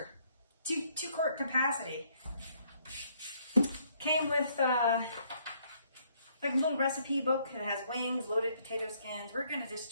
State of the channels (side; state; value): both; inverted; correlation -0.68